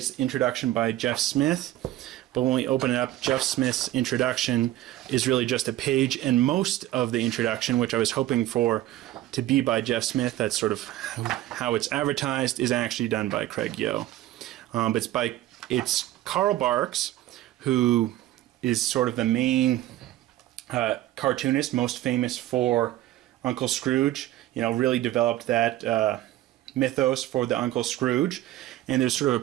introduction by Jeff Smith, but when we open it up, Jeff Smith's introduction is really just a page, and most of the introduction, which I was hoping for to be by Jeff Smith, that's sort of how it's advertised, is actually done by Craig Yo. But it's Carl Barks, who is sort of the main cartoonist, most famous for Uncle Scrooge. Really developed that mythos for the Uncle Scrooge, and there's sort of a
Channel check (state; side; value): quieter; left; 14.7 dB